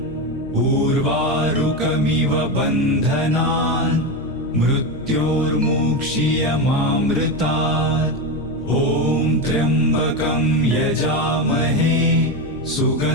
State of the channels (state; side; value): noise; left; hum, 17 dB below the sound